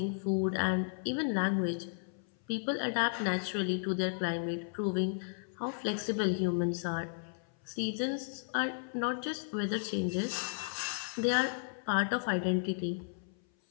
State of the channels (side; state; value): right; silent; 55 dB below the other